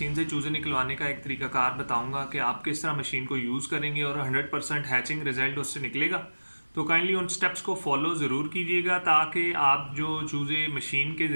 से चूज़े निकलवाने का एक तरीकाकार बताऊंगा कि आप किस तरह मशीन को यूज़ करेंगे और 100% हैचिंग रिजल्ट उससे निकलेगा। तो काइंडली उन स्टेप्स को फॉलो ज़रूर कीजिएगा ताकि आप जो चूज़े मशीन के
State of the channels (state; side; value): inverted; both; correlation -1.00